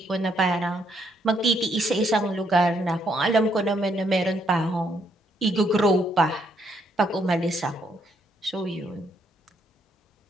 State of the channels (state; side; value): normal; both; correlation 0.73